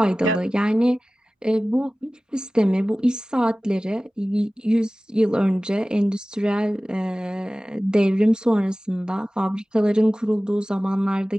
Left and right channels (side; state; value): both; normal; correlation 0.97